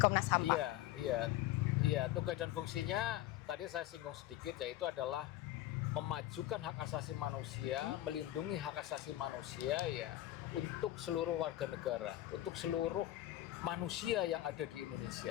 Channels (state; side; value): quieter; right; 14.5 dB